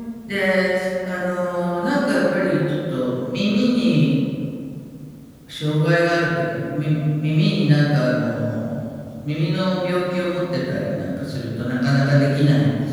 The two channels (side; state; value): both; identical; correlation 1.00